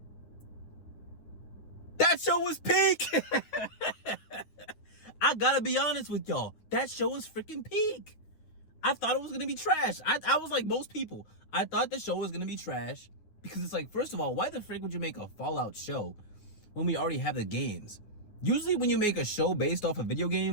That show was peak! I gotta be honest with y'all. That show was freaking peak. I thought it was gonna be trash. I was like most people. I thought the show was gonna be trash because it's like, first of all, why the frick would you make a Fallout show when we already have the games? Usually when you make a show based off of video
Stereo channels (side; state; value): right; late; 9.6 ms